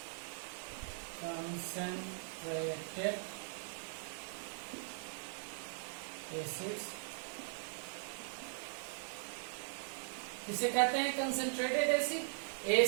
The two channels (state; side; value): silent; left; digital silence